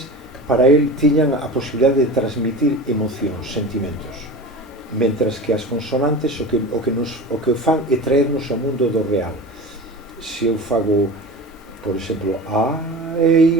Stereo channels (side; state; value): both; normal; correlation 0.32